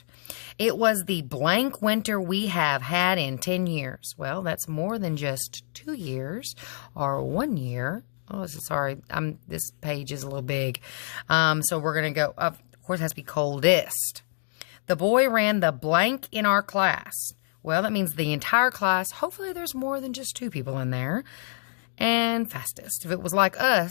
It was the blank winter we have had in 10 years. Well, that's more than just 2 years or 1 year. Oh, sorry. This page is a little big. So we're going to go, of course, it has to be coldest. The boy ran the blank in our class. Well, that means the entire class. Hopefully there's more than just 2 people in there. And fastest. If it was like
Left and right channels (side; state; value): right; silent; digital silence